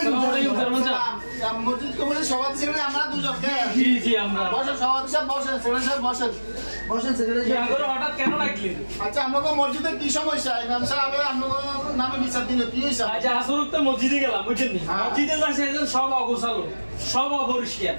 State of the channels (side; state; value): both; inverted; correlation -1.00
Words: চেয়ারম্যান সাহেব মসজিদ কমিটির সভাপতি সেক্রেটারি আমরা দুজন জি আমরা বসেন সভাপতি সাহেব বসেন সেক্রেটারি সাহেব বসেন বসেন সেক্রেটারি আগর হঠাৎ কেন ডাকলেন? আচ্ছা আপনাকে মসজিদে কি সমস্যা ইমাম সাহেব আপনার নামে বিচার দিল কি হয়েছে আচ্ছা আসরত তো মসজিদে গেলাম বুঝছেন নি মসজিদে যাচ্ছে সব অগোছালো সব অপরিষ্কার